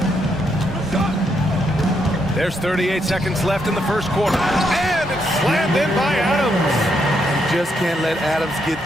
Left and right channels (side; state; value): both; normal; correlation 0.78